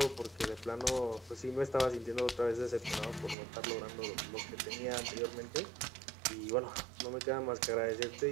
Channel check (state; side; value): drops out; left; at 3.4 s